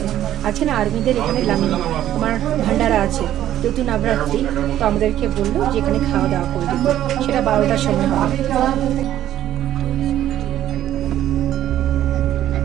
আছে না আর্মিদের এখানে তোমার ভান্ডারা আছে, যেহেতু নবরাত্রি, তো আমাদেরকে বললো যে এখানে খাওয়া দাওয়া করে দেবো, সেটা 12টার সময় হবে।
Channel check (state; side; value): quieter; left; 12.2 dB